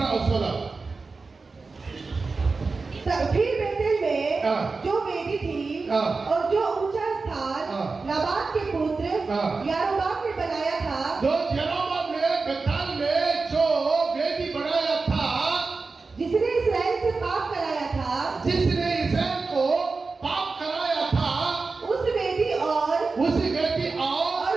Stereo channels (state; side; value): quieter; left; 4.1 dB